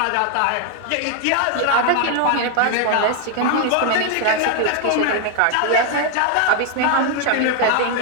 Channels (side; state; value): both; different; correlation 0.00